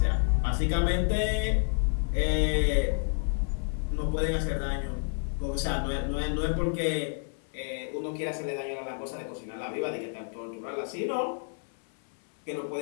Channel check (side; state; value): right; silent; 58 dB below the other